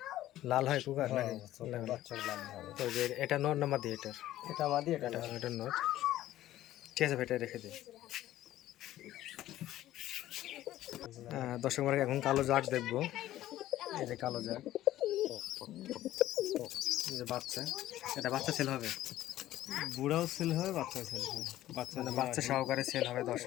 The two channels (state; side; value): quieter; right; 14.1 dB